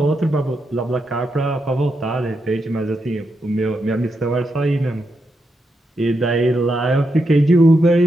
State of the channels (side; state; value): both; normal; correlation 0.84